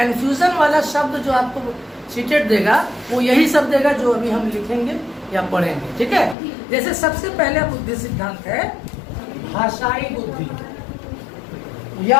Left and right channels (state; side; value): drops out; right; at 6.4 s